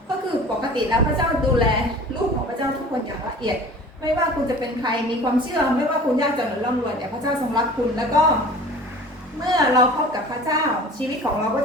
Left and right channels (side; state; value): both; normal; correlation 0.42